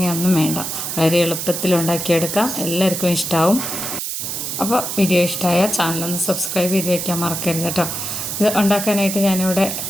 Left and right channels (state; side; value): noise; right; hiss, 4 dB below the sound